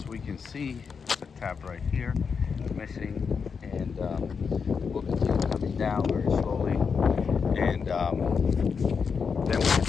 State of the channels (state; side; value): quieter; right; 5.8 dB